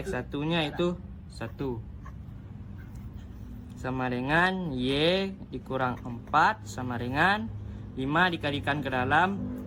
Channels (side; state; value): both; identical; correlation 1.00